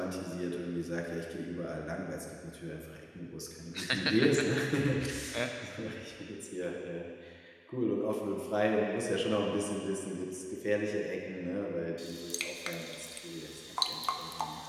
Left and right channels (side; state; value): both; identical; correlation 1.00